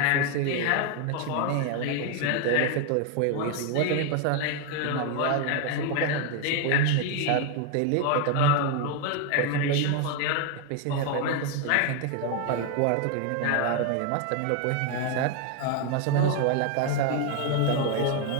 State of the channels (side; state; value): both; different; correlation 0.01